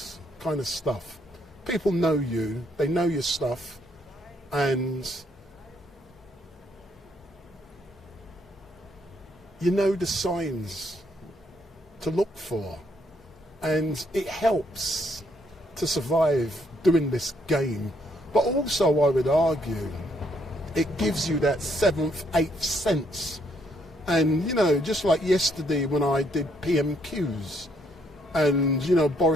kind of stuff, people know you, they know your stuff, and you know the signs to look for, and it helps to survive doing this game. But also, I would argue, it gives you that seventh, eighth sense. And, you know, just like yesterday when I did PMQs, and, you know,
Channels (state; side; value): normal; both; correlation 0.71